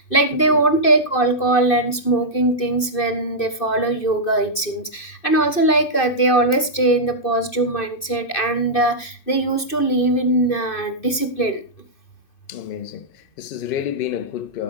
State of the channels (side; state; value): right; late; 2.6 ms